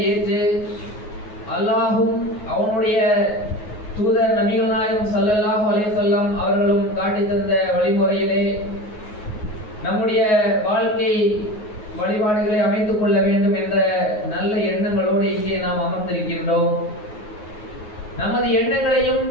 ஏற்று அல்லாஹும் அவனுடைய தூதர் நபிகள் நாயகம் ஸல்லல்லாஹு அலைஹி வஸல்லம் அவர்களும் காட்டி தந்த வழிமுறையிலே நம்முடைய வாழ்க்கை வழிபாடுகளை அமைத்துக் கொள்ள வேண்டும் என்ற நல்ல எண்ணங்களோடு இங்கே நாம் அமர்ந்திருக்கின்றோம். நமது எண்ணங்களையும்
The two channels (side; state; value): right; late; 9.5 ms